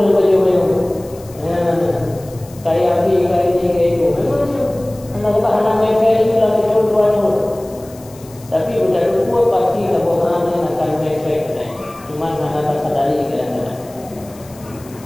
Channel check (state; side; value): noise; left; hiss, 23 dB below the sound